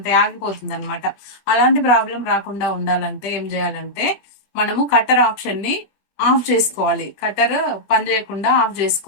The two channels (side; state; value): right; late; 21 ms